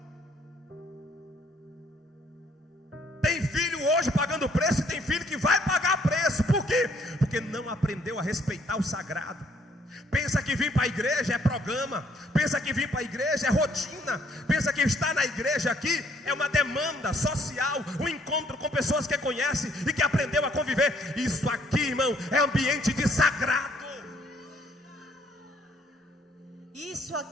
Tem filho hoje pagando preço, e tem filho que vai pagar preço. Por quê? Porque não aprendeu a respeitar o sagrado. Pensa que vir para a igreja é programa, pensa que vir para a igreja é rotina, pensa que estar na igreja aqui é uma demanda social, um encontro com pessoas que conhece e que aprendeu a conviver. Isso aqui, irmão, é ambiente de sagrado. Isso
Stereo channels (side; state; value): both; normal; correlation 0.66